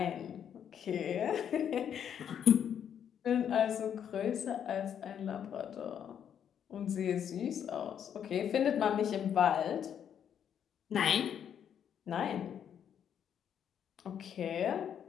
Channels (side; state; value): right; quieter; 8.8 dB